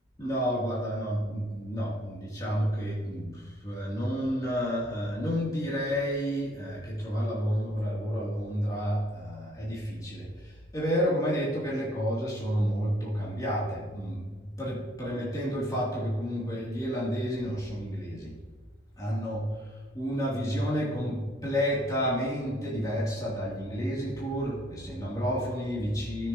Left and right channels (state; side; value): normal; both; correlation 0.64